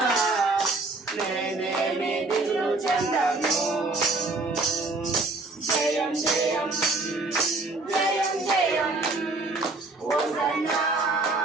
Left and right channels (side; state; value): left; quieter; 3.4 dB